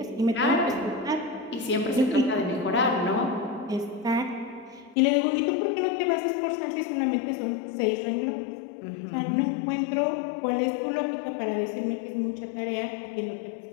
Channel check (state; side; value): drops out; right; at 5.0 s